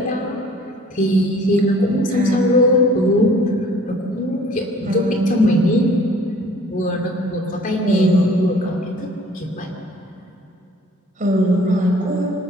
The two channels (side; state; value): both; normal; correlation 0.53